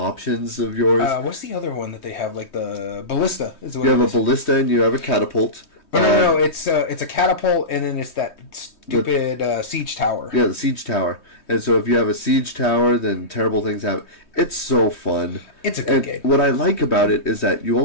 of yours. What's the other one that they have? Like the ballista. You have a ballista and you have a catapult. No. It's a catapult, and then it's that stupid siege tower. Yeah, the siege tower. And so if you have a siege tower, then terrible things happen. It's so fun. It's a good game. What I like about it is that you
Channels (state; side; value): late; right; 3.2 ms